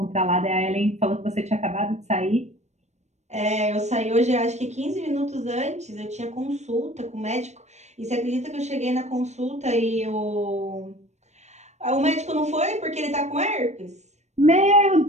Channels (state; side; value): late; left; 0.33 ms